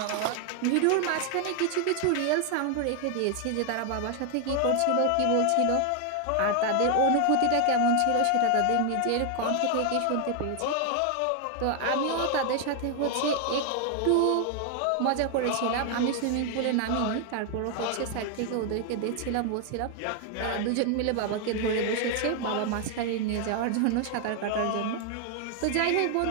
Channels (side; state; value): both; different; correlation 0.00